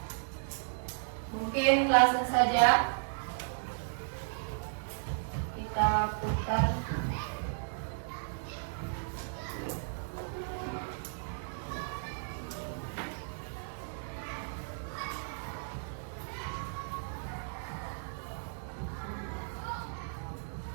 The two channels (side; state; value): left; silent; digital silence